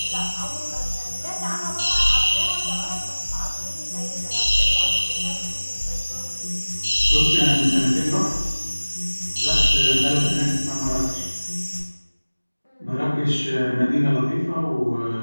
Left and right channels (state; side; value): inverted; both; correlation -1.00